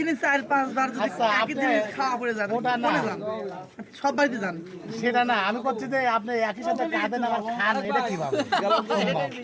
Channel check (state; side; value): identical; both; correlation 1.00